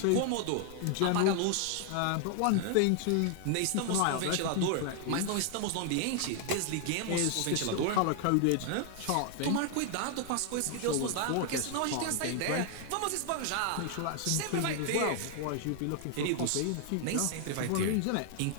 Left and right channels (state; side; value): different; both; correlation 0.00